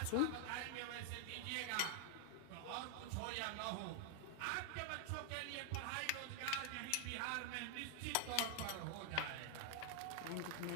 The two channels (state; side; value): different; both; correlation 0.00